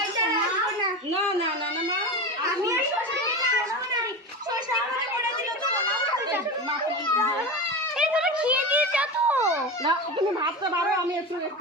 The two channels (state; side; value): normal; both; correlation 0.25